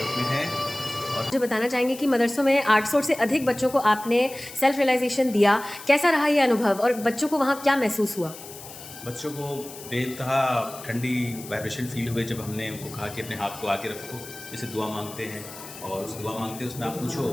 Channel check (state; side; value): noise; left; hiss, 15 dB below the sound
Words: में है। और मुझे बताना चाहेंगे कि मदरसों में 800 से अधिक बच्चों को आपने सेल्फ रियलाइजेशन दिया, कैसा रहा ये अनुभव और बच्चों को वहाँ क्या महसूस हुआ? बच्चों को बेतहा ठंडी वाइब्रेशन फील हुए जब हमने उनको कहा कि अपने हाथ को आगे रखो, जैसे दुआ मांगते हैं, और उस दुआ मांगते उसमें आप पूछो